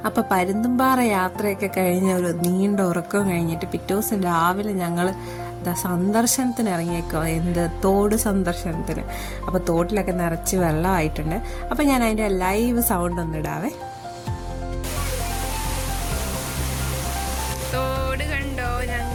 അപ്പോൾ പരുന്തുംപാറ യാത്രയൊക്കെ കഴിഞ്ഞ ഒരു നീണ്ട ഉറക്കം കഴിഞ്ഞിട്ട് പിറ്റേ ദിവസം രാവിലെ ഞങ്ങൾ സന്ദർശനത്തിന് ഇറങ്ങിയേക്കോ, തോട് സന്ദർശനത്തിന്. അപ്പോൾ തോട്ടിലൊക്കെ നിറച്ച് വെള്ളമായിട്ടുണ്ട്. അപ്പോൾ ഞാൻ അതിൻ്റെ ലൈവ് സൗണ്ട് ഒന്ന് ഇടാവേ. തോട് കണ്ടോ,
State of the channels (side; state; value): both; identical; correlation 1.00